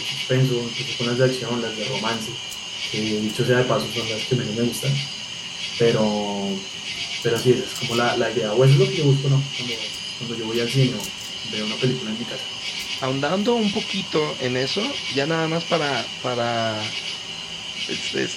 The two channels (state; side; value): identical; both; correlation 1.00